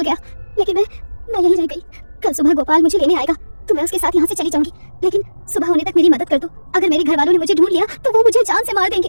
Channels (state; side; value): inverted; both; correlation -1.00